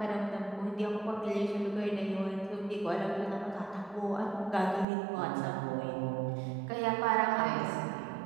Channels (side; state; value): left; drops out; at 4.9 s